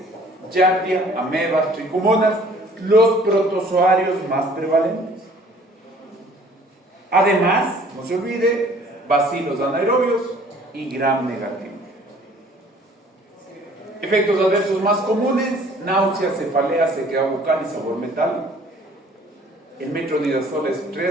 Giardia, amebas, tricomonas, los protozoarios más prevalentes. Además, no se olvide, bacilos anaerobios y gram negativos. Efectos adversos más comunes: náusea, cefalea, sequedad bucal y sabor metálico. El metronidazol es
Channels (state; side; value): normal; both; correlation 0.54